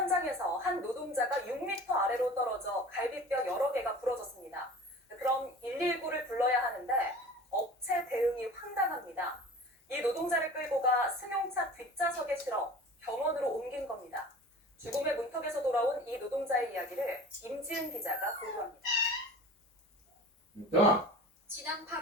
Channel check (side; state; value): both; normal; correlation 0.40